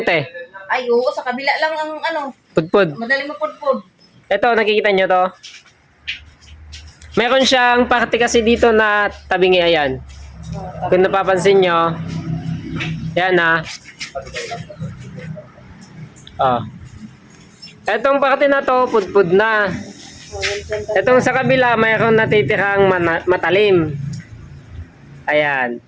te. Ay, oo, sa kabila lang ang ano, Pudpud. madali mapudpud. Ito, nakikita nyo to? Meron siyang parte kasi dito na tabingi, ayan. Kung napapansin nyo, yan na. Etong parte na to, pudpud na. Etong sa kabila, mayroon natitirang matalim. Ayan.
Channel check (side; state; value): both; identical; correlation 1.00